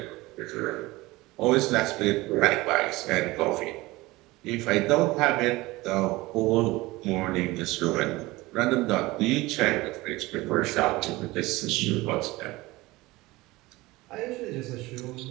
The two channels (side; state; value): left; quieter; 20.4 dB